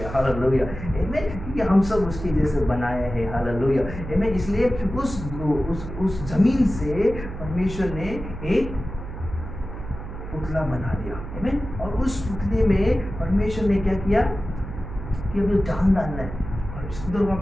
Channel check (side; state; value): right; noise; hum, 10 dB below the sound